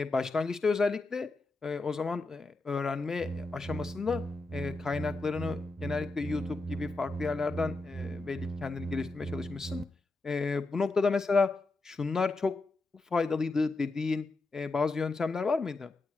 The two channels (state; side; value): quieter; right; 3.4 dB